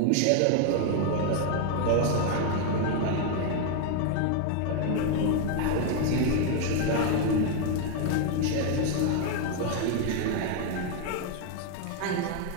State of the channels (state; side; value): different; both; correlation 0.00